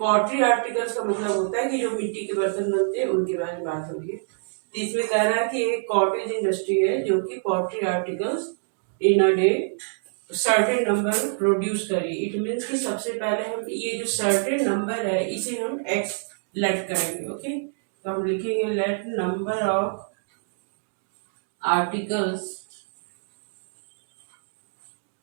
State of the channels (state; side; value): silent; left; digital silence